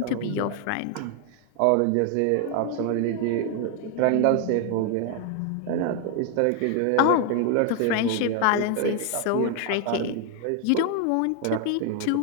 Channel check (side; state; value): both; different; correlation 0.00